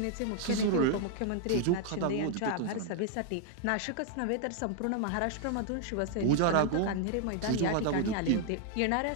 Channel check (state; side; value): different; both; correlation 0.00